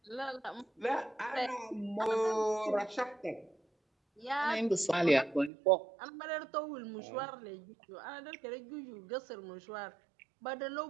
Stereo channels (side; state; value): left; drops out; at 5.5 s